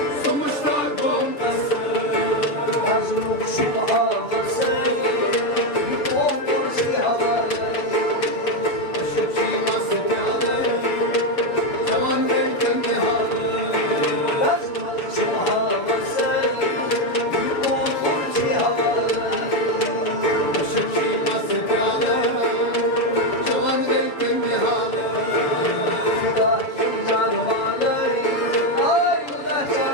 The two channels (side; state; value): right; late; 7.2 ms